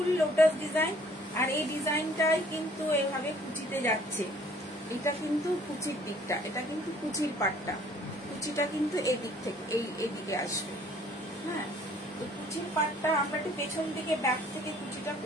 lotus design. আর এই ডিজাইনটাই কিন্তু এভাবে কুচিতে যাচ্ছে, এটা কিন্তু কুচির দিকটা, এটা কিন্তু কুচির পাটটা, কুচিটা কিন্তু এই দিক থেকে এইদিকে আসবে। হ্যাঁ, তো কুচির পাটটা আমরা একটু পেছন দিকে ব্যাক থেকে কুচিটা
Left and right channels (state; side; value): normal; both; correlation 0.57